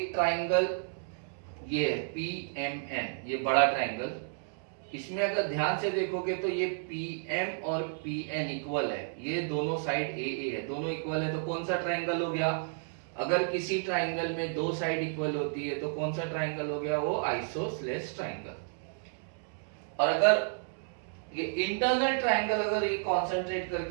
ट्राइंगल ये है PMN, ये बड़ा ट्राइंगल। इसमें अगर ध्यान से देखोगे तो ये PM और PN इक्वल है, ये दोनों साइड AA है, दोनों इक्वल है। तो कौन सा ट्राइंगल हो गया? अगर किसी ट्राइंगल में दो साइड इक्वल होती है तो कौन सा ट्राइंगल हो गया? वो आइसोसेलेस ट्राइंगल। और अगर ये इंटरनल ट्राइंगल अगर ये कॉन्सेंट्रेट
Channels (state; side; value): silent; left; digital silence